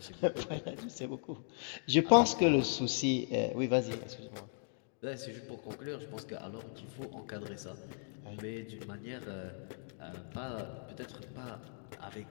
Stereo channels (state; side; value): silent; right; digital silence